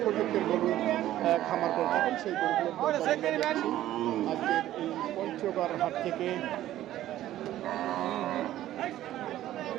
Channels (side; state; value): left; quieter; 13.6 dB